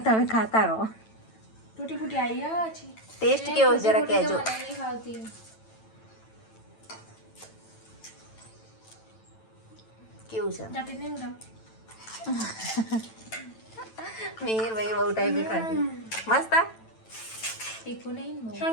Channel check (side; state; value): right; late; 9.0 ms